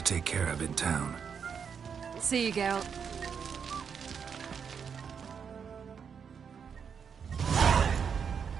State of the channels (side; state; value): left; quieter; 6.8 dB